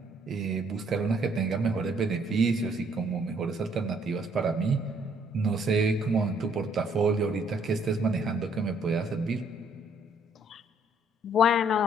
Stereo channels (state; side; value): normal; both; correlation 0.65